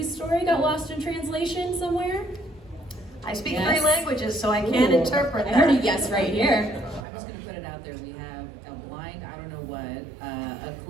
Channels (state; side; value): drops out; left; at 7.1 s